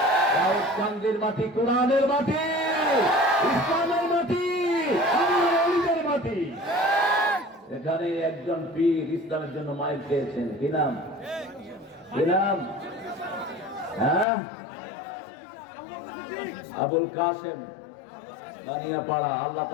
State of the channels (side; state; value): right; drops out; at 14.2 s